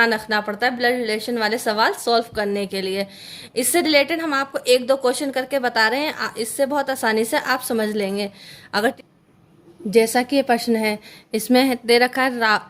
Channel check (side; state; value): both; identical; correlation 1.00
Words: रखना पड़ता है ब्लड रिलेशन वाले सवाल सॉल्व करने के लिए। इससे रिलेटेड हम आपको एक दो क्वेश्चन करके बता रहे हैं, इससे बहुत आसानी से आप समझ लेंगे। अगर जैसा कि ये प्रश्न है, इसमें दे रखा है